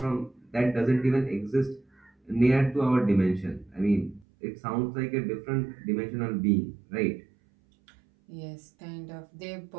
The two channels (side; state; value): left; drops out; at 4.2 s